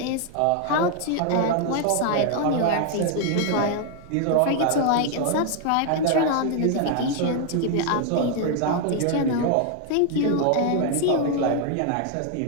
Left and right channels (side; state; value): both; different; correlation 0.01